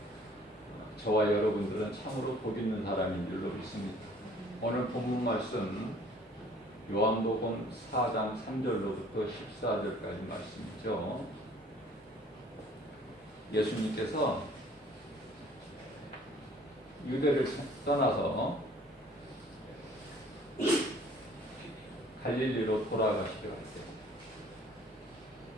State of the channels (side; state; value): both; normal; correlation 0.55